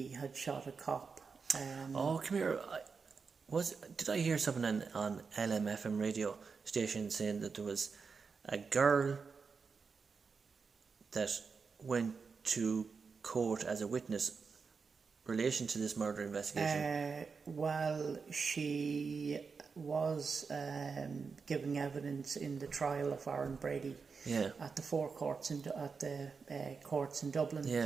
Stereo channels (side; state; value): left; quieter; 5.2 dB